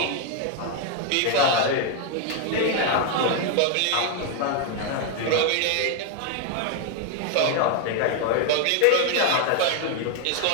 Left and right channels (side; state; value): both; different; correlation 0.01